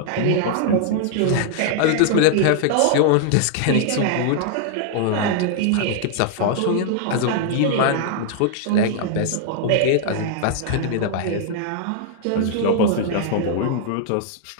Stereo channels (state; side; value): different; both; correlation -0.01